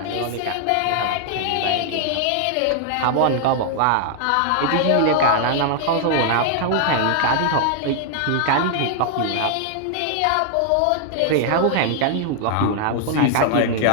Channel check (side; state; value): both; different; correlation 0.00